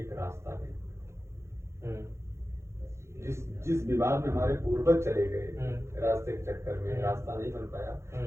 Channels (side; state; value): left; late; 0.13 ms